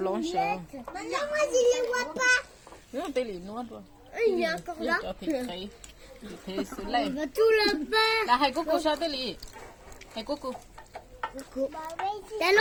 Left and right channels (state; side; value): identical; both; correlation 1.00